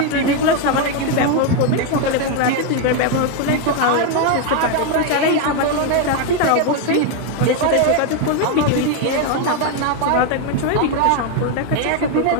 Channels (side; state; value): both; different; correlation 0.01